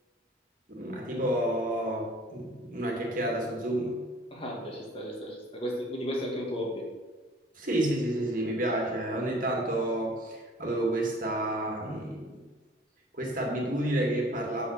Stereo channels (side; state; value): both; normal; correlation 0.51